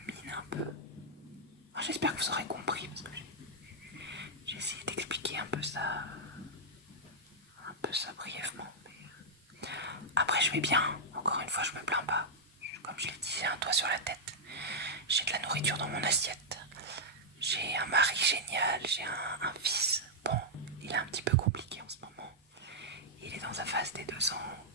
mine un peu. Enfin, j'espère que vous aurez compris parce que j'ai essayé d'expliquer un peu ça brièvement. Mais après je vais bien, encore une fois je me plains pas. Comme je l'ai dit, j'ai un toit sur la tête, j'ai de la nourriture dans mon assiette, j'ai un mari génial, j'ai un fils. Bon, il est un petit peu compliqué en ce moment. Il est dans sa phase des 2 ans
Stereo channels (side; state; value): both; normal; correlation -0.05